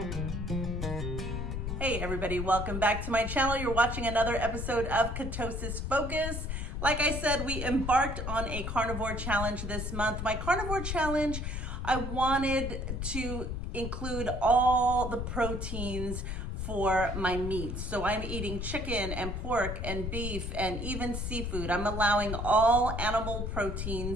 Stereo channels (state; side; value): noise; left; rumble, 4 dB below the sound